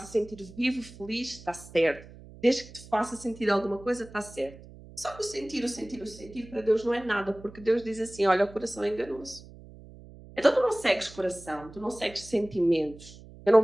sentir vivo, feliz, está certo. Desde que te faça sentir alguma coisa, está certo. Só que o sentir para Deus não é nada, porque Deus diz assim: olha, o coração é enganoso. Então tu não segues coração, tu não segues sentimentos. Eu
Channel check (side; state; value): right; noise; hum, 19 dB below the sound